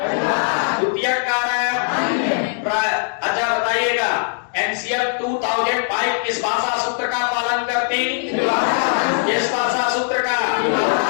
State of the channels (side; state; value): right; silent; digital silence